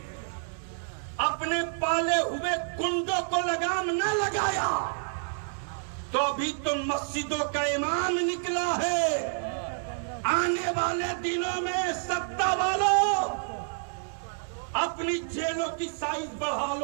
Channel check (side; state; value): left; silent; digital silence